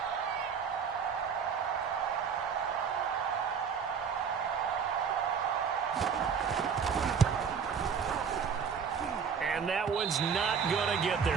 And that one's not going to get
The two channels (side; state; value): left; quieter; 6.6 dB